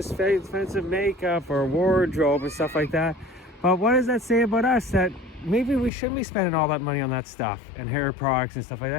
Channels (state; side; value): drops out; right; at 5.9 s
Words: makeup or wardrobe and stuff like that. But what does that say about us? That maybe we shouldn't be spending all that money on that stuff and hair products and stuff like